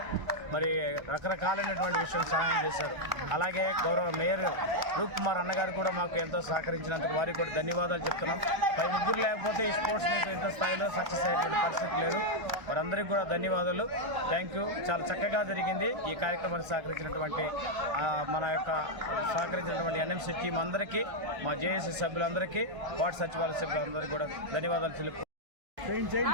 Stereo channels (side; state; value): left; late; 1.3 ms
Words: మరి రకరకాలైనటువంటి విషయం సహాయం చేశారు. అలాగే గౌరవ మేయర్ రూప్ కుమార్ అన్నగారు కూడా మాకు ఎంతో సహకరించినందుకు వారికి కూడా ధన్యవాదాలు చెప్తున్నాం. పై ముగ్గురు లేకపోతే ఈ స్పోర్ట్స్ మీట్ ఇంత స్థాయిలో సక్సెస్ అయ్యేటువంటి పరిస్థితి లేదు. వారందరికీ కూడా ధన్యవాదాలు. Thank you. చాలా చక్కగా జరిగింది. ఈ కార్యక్రమానికి సహకరించినటువంటి NMC టీం అందరికీ, మా జేఏసీ సభ్యులందరికీ, వార్డు సచివాలయ సభ్యులందరికీ కూడా ధన్యవాదాలు తెలుపు.